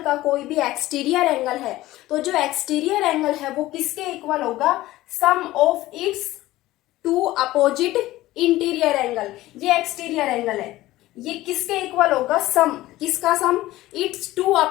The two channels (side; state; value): right; quieter; 16.7 dB